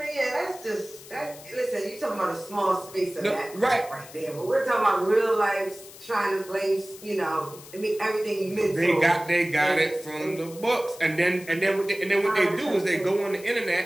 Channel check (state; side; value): noise; left; hiss, 18 dB below the sound